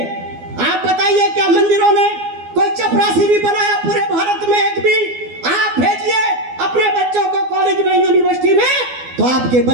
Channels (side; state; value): left; late; 12 ms